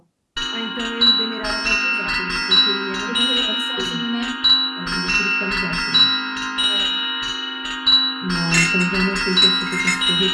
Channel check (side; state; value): both; identical; correlation 1.00